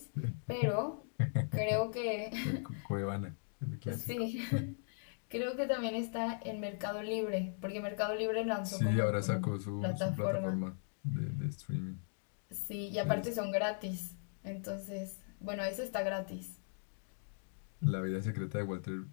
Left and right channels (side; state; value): right; silent; digital silence